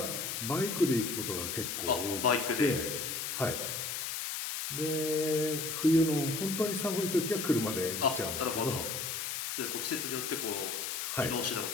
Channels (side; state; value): left; noise; hiss, 3 dB below the sound